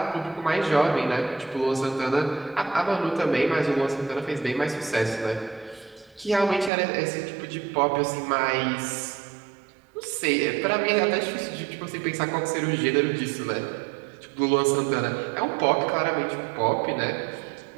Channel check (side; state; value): left; drops out; at 6.7 s